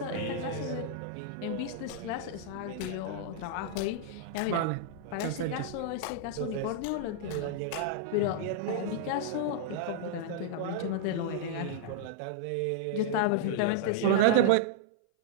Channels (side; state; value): both; different; correlation -0.01